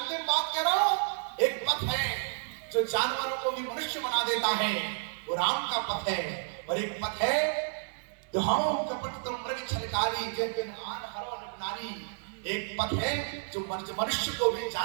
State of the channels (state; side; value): silent; left; digital silence